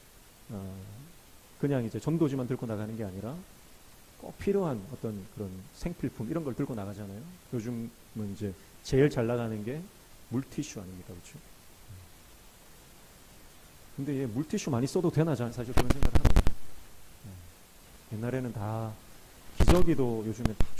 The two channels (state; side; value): identical; both; correlation 1.00